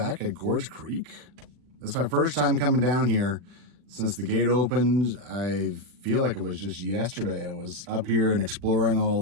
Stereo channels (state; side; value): late; left; 40 ms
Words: at Gorge Creek. That's my first time coming down here since the gate opened. I feel like it was just yesterday. I was up here and exploring all